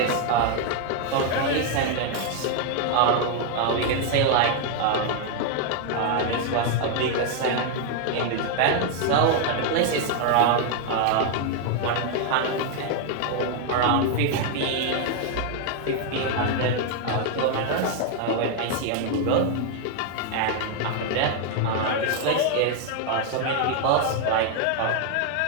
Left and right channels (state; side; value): different; both; correlation 0.01